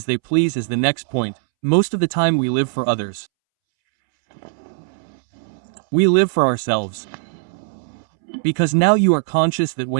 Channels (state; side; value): silent; left; 66 dB below the other